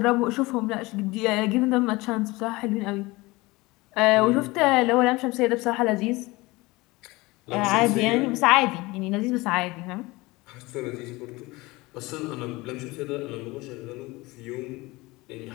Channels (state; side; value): quieter; right; 21.9 dB